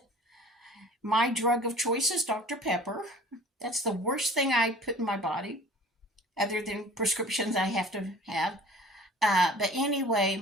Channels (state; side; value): normal; both; correlation 0.46